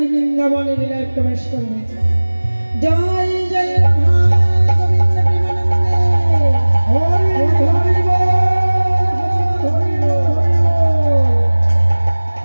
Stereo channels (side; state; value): both; inverted; correlation -1.00